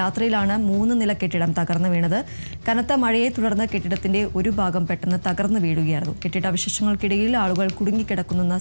3 നില കെട്ടിടം തകർന്നു വീണത്. കനത്ത മഴയെ തുടർന്ന് കെട്ടിടത്തിന്റെ ഒരു ഭാഗം പെട്ടെന്ന് തകർന്നു വീഴുകയായിരുന്നു. കെട്ടിടാവശിഷ്ടങ്ങൾക്കിടയിൽ ആളുകൾ കുടുങ്ങിക്കിടക്കുന്നെന്ന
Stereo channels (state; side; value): inverted; both; correlation -1.00